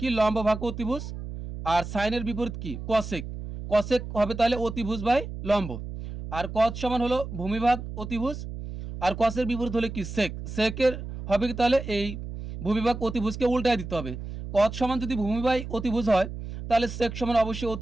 কি লম্ব ভাগ অতিভুজ, আর সাইনের বিপরীত কি কসেক, কসেক হবে তাহলে অতিভুজ বাই লম্ব, আর কস সমান হলো ভূমিভাগ অতিভুজ, আর কসের বিপরীত হলে কি সেক, সেকের হবে কি তাহলে এই ভূমিভাগ অতিভুজকে উল্টায় দিতে হবে। কস সমান যদি ভূমি বাই অতিভুজ হয় তাহলে সেক সমান অবশ্যই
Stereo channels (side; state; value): right; noise; hum, 9 dB below the sound